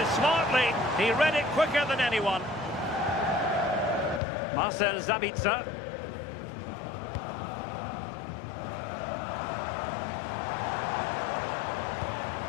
smartly. He read it quicker than anyone. Marcel Sabitzer.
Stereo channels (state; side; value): drops out; right; at 4.2 s